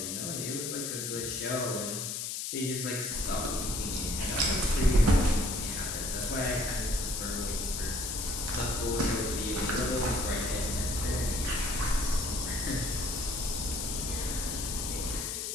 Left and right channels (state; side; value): noise; left; hiss, 3 dB below the sound